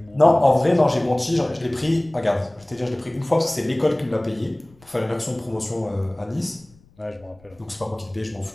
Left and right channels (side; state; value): left; noise; rumble, 29 dB below the sound